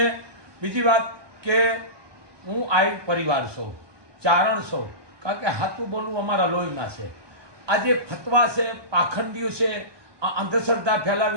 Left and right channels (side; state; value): left; late; 1.2 ms